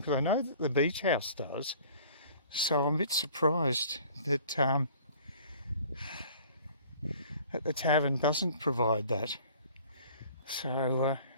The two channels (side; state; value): both; inverted; correlation -0.50